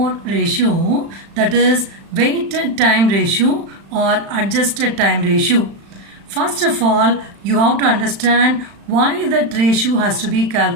ratio, that is weighted time ratio or adjusted time ratio. First of all, you have to understand why that ratio has to be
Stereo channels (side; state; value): left; late; 35 ms